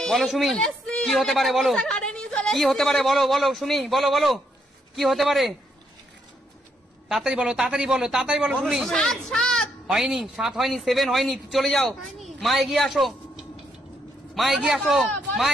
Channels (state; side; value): normal; both; correlation 0.75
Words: বলো সুমি কি হতে পারে, বলো সুমি, বলো কি হতে পারে, তাড়াতাড়ি বলো সুমি। হয়নি, 7 হয়নি, 7 হয়নি, চলে যাও মা, এগিয়ে আসো।